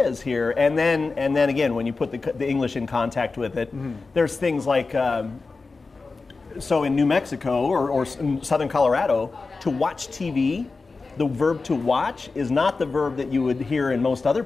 here, and then again, when you put the English in contact with it, there's things like. So in New Mexico or in southern Colorado, to watch TV, the verb to watch is not the verb that you would hear in most other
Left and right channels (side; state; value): right; quieter; 4.0 dB